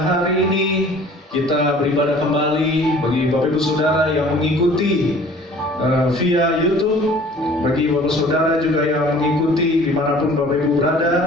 ini kita beribadah kembali bagi Bapak Ibu Saudara yang mengikuti via YouTube, bagi Bapak Saudara juga yang mengikuti dimanapun Bapak Ibu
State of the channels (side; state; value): both; normal; correlation 0.50